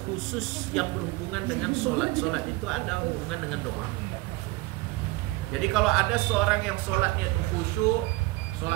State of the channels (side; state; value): left; quieter; 21.4 dB